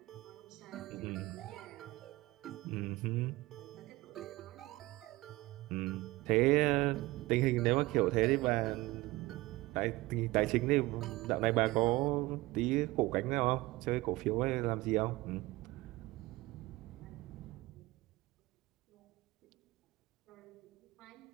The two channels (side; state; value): left; quieter; 20.0 dB